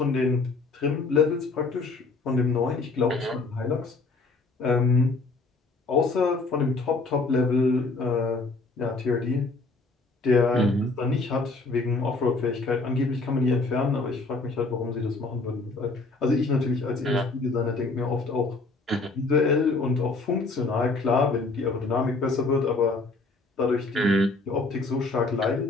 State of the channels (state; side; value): quieter; right; 3.6 dB